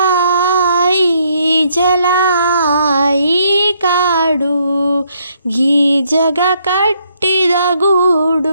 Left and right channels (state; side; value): inverted; both; correlation -0.71